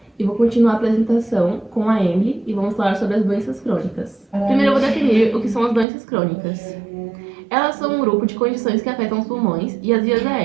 e vou continuar a apresentação com a Emily e vamos falar sobre as doenças crônicas. Primeiro eu vou definir o que são as doenças crônicas. Elas são um grupo de condições que afetam os pulmões e as vias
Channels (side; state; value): left; drops out; at 5.9 s